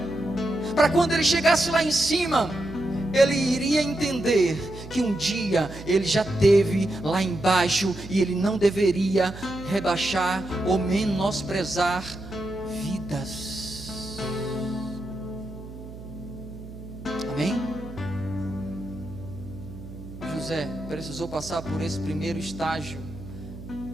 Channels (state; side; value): noise; right; hum, 14 dB below the sound